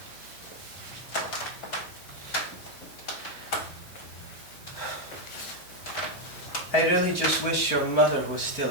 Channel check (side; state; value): right; late; 5.1 ms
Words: I really just wish your mother was still